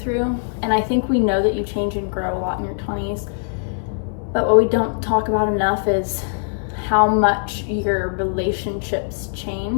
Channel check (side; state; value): right; silent; 65 dB below the other